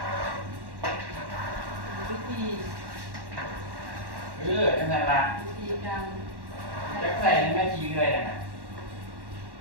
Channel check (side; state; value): left; late; 1.1 ms